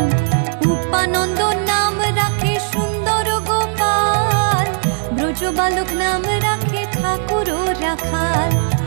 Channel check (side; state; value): left; silent; digital silence